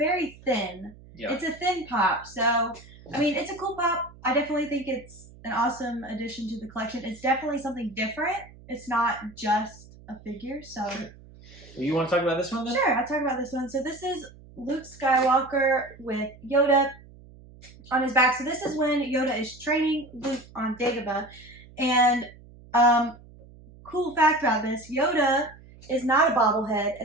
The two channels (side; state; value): right; noise; hum, 22 dB below the sound